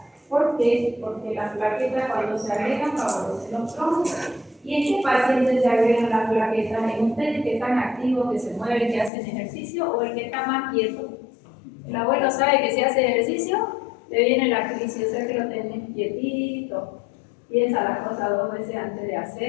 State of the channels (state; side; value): drops out; right; at 9.1 s